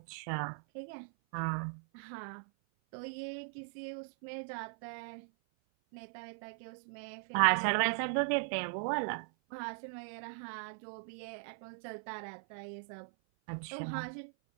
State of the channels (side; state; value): left; silent; 52 dB below the other